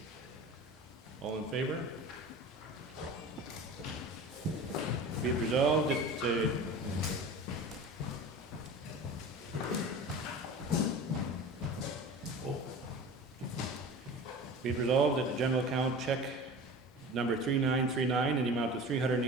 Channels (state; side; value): normal; both; correlation 0.36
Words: All in favor? Be it resolved that be it resolved that the general account check number 3939 in the amount of